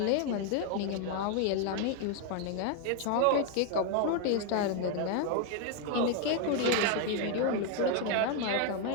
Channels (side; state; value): both; different; correlation 0.01